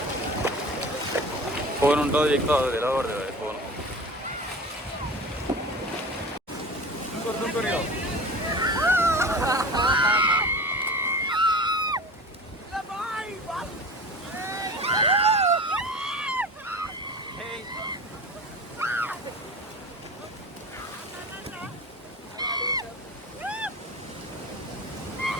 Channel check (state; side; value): normal; both; correlation 0.35